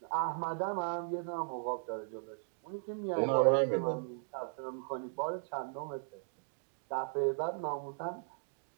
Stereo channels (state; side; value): silent; left; digital silence